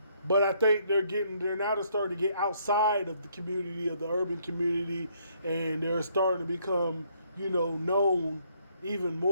but I think they're now starting to get outside of the community, of the urban community, and they're starting to become, known even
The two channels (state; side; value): inverted; both; correlation -0.69